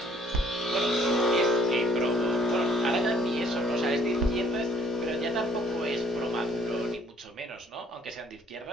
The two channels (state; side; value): normal; both; correlation 0.62